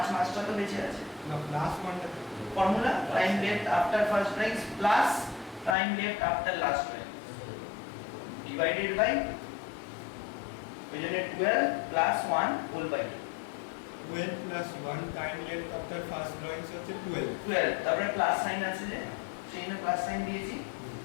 মাসটা তো বেঁচে আছে। না প্লাস 1টা formula time left after first drawings plus time left after last drawings divided by, ওই জন্য 12 + 1 whole by 12 + 1 time left after first drawings হচ্ছে 12, তারপরে প্লাস সাইন আছে যে সেই জন্য প্লাস সাইন দিয়েছি।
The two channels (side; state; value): right; drops out; at 5.8 s